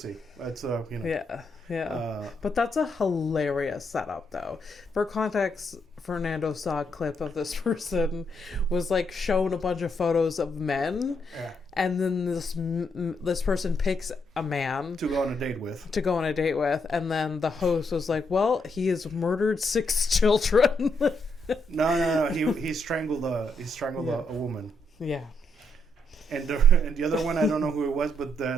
That's you know. Yeah. But that's a hilarious setup, though. For context, Fernando saw a clip of this person was like shown a bunch of photos of men, and then this person picks a man to go on a date with, and then the host was like, "Well, he has murdered 6 children." No. He strangled a woman. Yeah. And the other one, I don't know who it was, but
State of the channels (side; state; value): both; normal; correlation 0.77